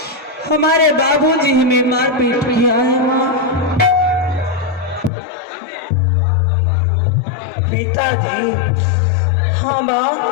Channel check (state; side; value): drops out; right; at 5.1 s